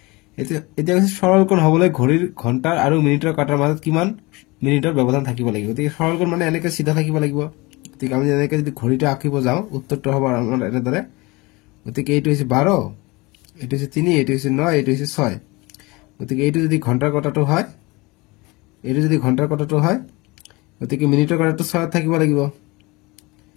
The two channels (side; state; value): right; quieter; 24.1 dB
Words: এতিয়া কৈছে সৰল কোণ হ'বলৈ ঘড়ীৰ ঘণ্টাৰ আৰু মিনিটৰ কাটাৰ মাজত কিমান মিনিটৰ ব্যৱধান থাকিব লাগিব গতিকে সৰল কোণ মানে এনেকে সিধা থাকিব লাগিব গতিকে আমি এনেকে যদি ঘড়ীটো আঁকিব যাওঁ উত্তৰটো হ'ব আমাৰ এনেদৰে গতিকে এইটো হৈছে 12 এইটো হৈছে 3 এইটো হৈছে 9 এইটো হৈছে 6 গতিকে এইটো যদি ঘণ্টাৰ কাটাটো হয় গতিকে মিনিটৰ কাটাটো 6 থাকিব লাগিব